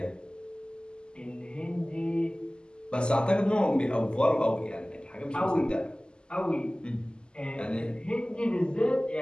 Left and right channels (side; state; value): right; late; 0.048 ms